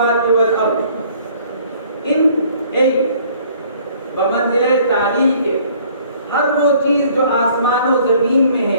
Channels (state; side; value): inverted; both; correlation -0.57